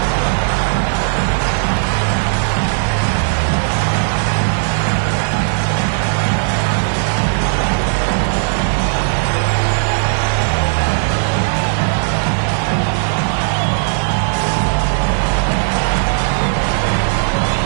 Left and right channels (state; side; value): silent; left; digital silence